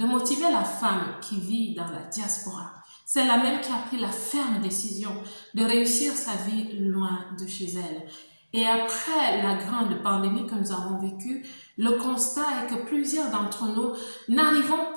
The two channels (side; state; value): both; inverted; correlation -1.00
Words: motiver la femme qui vit dans la diaspora. C'est la même qui a pris la ferme décision de réussir sa vie loin de chez elle. Et après la grande pandémie que nous avons vécue, le constat est que plusieurs d'entre nous n'arrivons